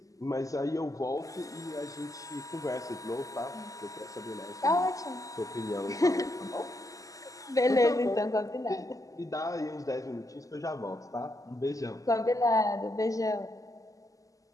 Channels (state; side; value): late; right; 0.17 ms